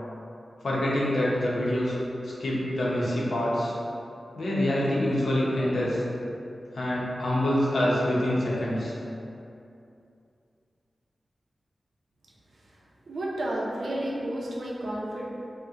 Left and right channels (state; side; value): normal; both; correlation 0.92